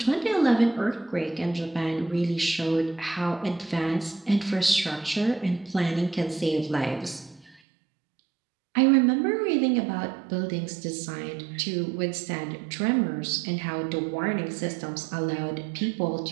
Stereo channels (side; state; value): left; drops out; at 7.6 s